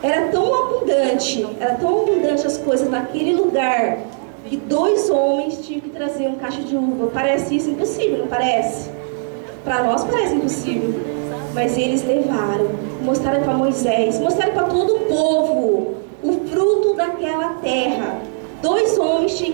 Era tão abundante as coisas naquele lugar, que 2 homens tinham que trazer um caixa de uva. Parece isso impossível, não parece? Para nós parece impossível. Mas eles levaram, mostraram para Moisés, mostraram para todo o povo o fruto daquela terra. 2 homens tinham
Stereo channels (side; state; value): left; silent; 67 dB below the other